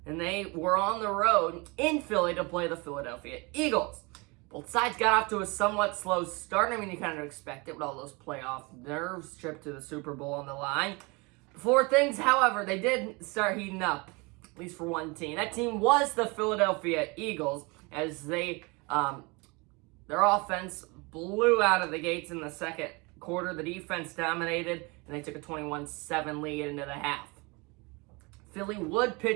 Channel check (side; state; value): left; quieter; 27.6 dB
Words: and they were on the road in Philly to play the Philadelphia Eagles. Both sides got off to a somewhat slow start. I mean, you kind of expect it with all those playoff nerves, trip to the Super Bowl on the line. Before things, however, they did start heating up, at least for one team. That team was the Philadelphia Eagles, as their offense blew out of the gates in the second quarter. The defense dominated, and they took a 21-7 lead into the half. Philly would